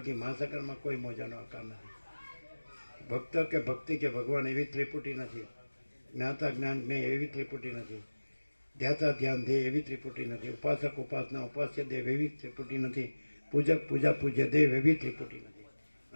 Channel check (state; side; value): inverted; both; correlation -1.00